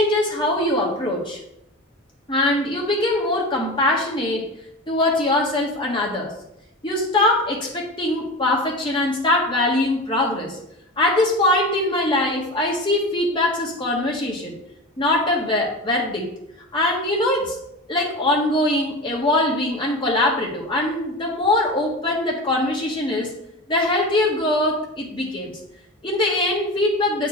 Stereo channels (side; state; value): both; normal; correlation 0.27